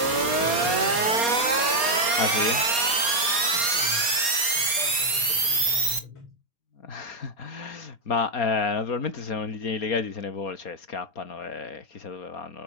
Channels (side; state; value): right; late; 4.3 ms